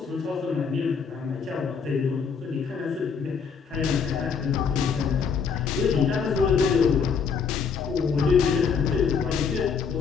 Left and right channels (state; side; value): quieter; right; 6.0 dB